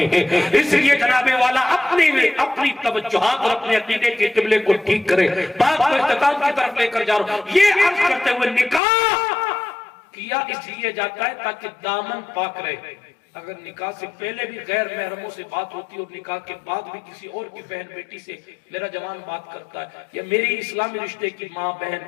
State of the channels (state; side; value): drops out; right; at 8.8 s